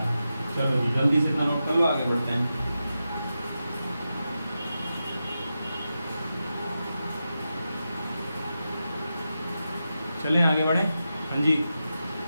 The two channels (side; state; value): both; inverted; correlation -0.90